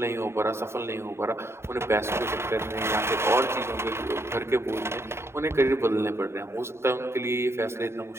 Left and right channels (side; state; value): left; late; 0.12 ms